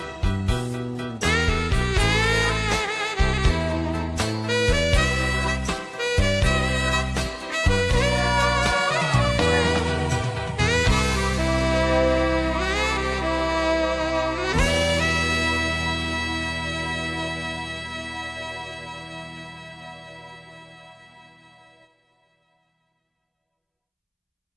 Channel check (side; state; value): both; identical; correlation 1.00